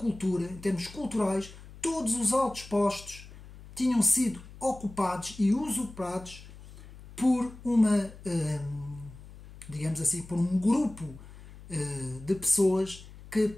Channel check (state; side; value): noise; left; hum, 18 dB below the sound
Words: em termos culturais, todos os altos postos tinham sido ocupados e usurpados por digamos assim, por um grupo de pessoas que